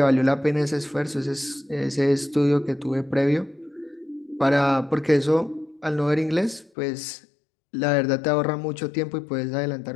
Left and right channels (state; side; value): drops out; right; at 6.7 s